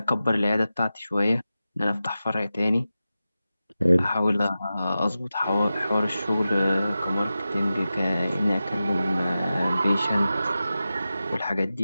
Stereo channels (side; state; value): both; inverted; correlation -0.93